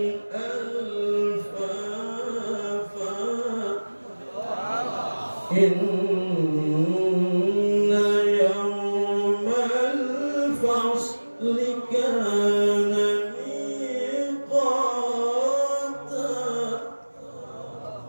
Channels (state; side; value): inverted; both; correlation -1.00